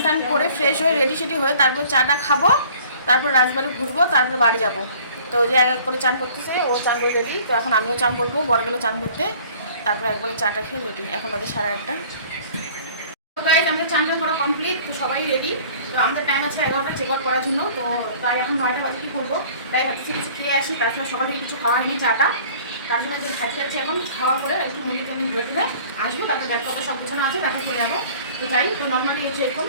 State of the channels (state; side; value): inverted; both; correlation -0.50